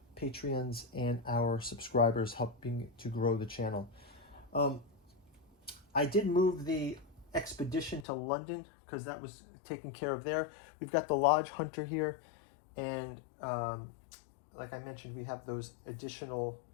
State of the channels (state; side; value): drops out; right; at 8.1 s